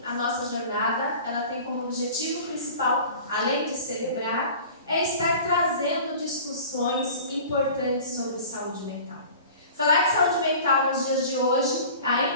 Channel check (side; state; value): both; inverted; correlation -0.42